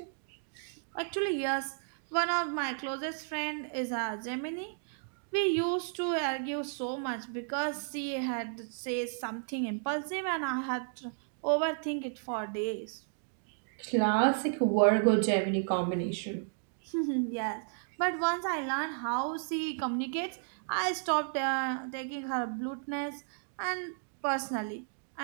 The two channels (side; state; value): left; silent; digital silence